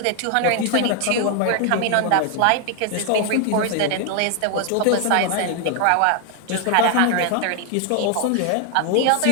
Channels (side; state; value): both; different; correlation 0.00